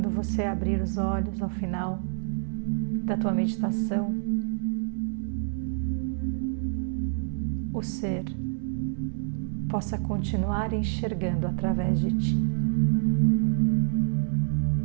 você abrir os olhos ao final da tua meditação, o ser possa continuar enxergando através de ti.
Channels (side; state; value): left; silent; digital silence